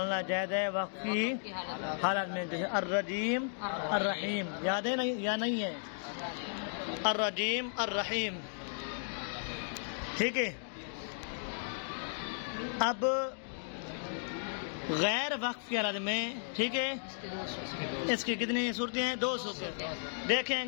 جائز ہے وقف کی حالت میں، جیسے الرجیم الرحیم، یاد ہے نہیں یا نہیں ہے؟ الرجیم الرحیم، ٹھیک ہے۔ اب غیر وقف کی حالت میں، ٹھیک ہے، اس کی کتنی صورتیں ہیں؟ دو صورتیں۔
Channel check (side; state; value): right; silent; digital silence